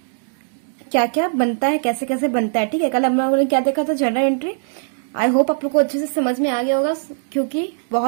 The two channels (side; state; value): left; silent; digital silence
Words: क्या क्या बनता है, कैसे कैसे बनता है। ठीक है, कल हम लोगों ने क्या देखा था, जनरल एंट्री। आई होप आप लोग को अच्छे से समझ में आ गया होगा क्योंकि